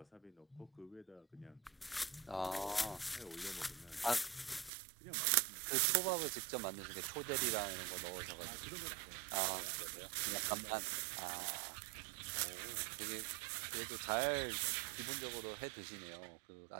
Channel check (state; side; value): drops out; left; at 4.7 s